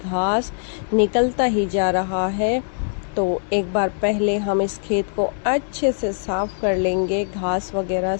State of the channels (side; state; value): right; silent; digital silence